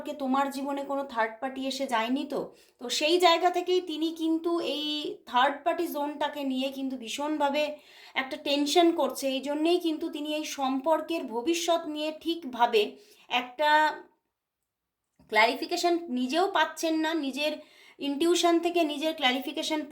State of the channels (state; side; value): identical; both; correlation 1.00